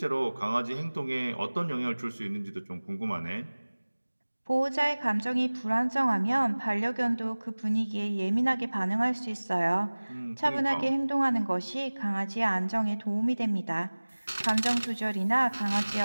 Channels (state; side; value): inverted; both; correlation -1.00